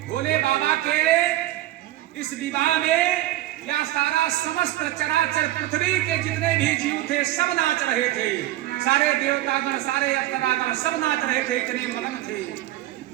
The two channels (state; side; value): quieter; left; 15.3 dB